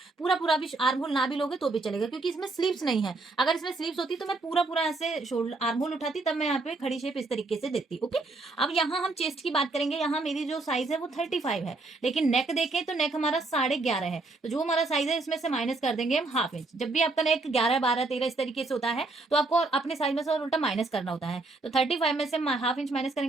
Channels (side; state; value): left; quieter; 3.3 dB